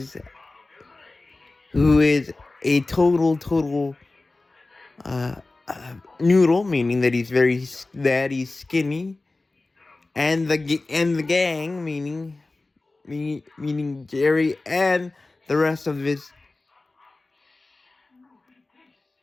a total noodle, meaning that he's skinny, and the gang, meaning Jerry and the rest of the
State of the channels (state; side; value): quieter; right; 3.2 dB